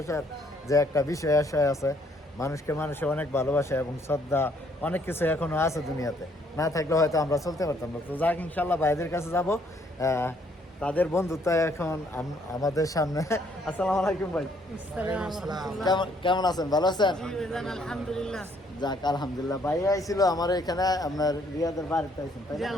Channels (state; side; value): normal; both; correlation 0.66